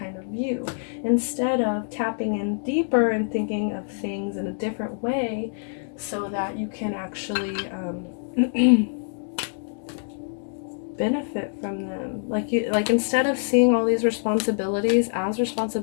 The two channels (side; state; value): right; silent; digital silence